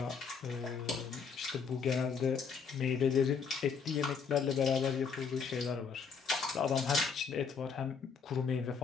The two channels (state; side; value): quieter; right; 5.9 dB